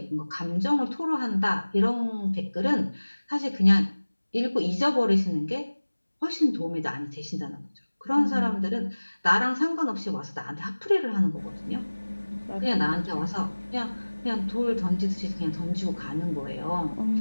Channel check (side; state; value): both; inverted; correlation -1.00